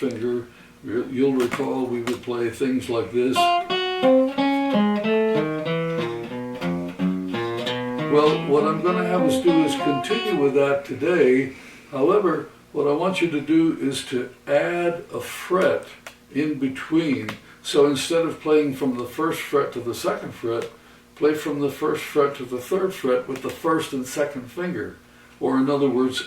You'll recall we would play things like this. Well, what I'm going to have us do is continue with that today. However, what I want you to do is to add a fret in between. So instead of playing from the 1st fret to the 2nd fret, play from the 1st fret to the 3rd fret with the 1st and 2nd finger. Or in other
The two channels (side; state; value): both; identical; correlation 1.00